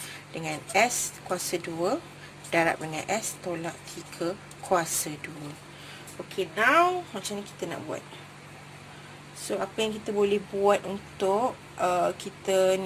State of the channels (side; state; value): both; identical; correlation 1.00